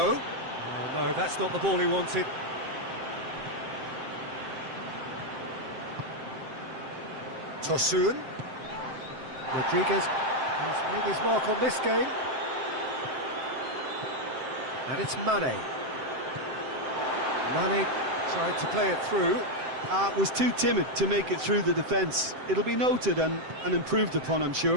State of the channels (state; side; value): late; left; 7.7 ms